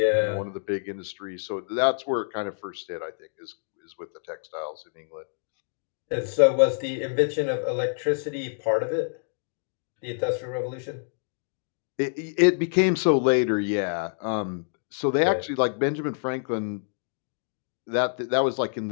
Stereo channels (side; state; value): right; silent; digital silence